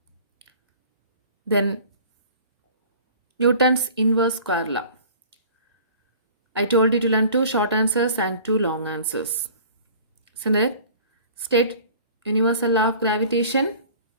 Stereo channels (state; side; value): inverted; both; correlation -0.46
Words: then Newton's inverse square law. I told you to learn two short answers and two long answers. Isn't it? State universal law of gravitation.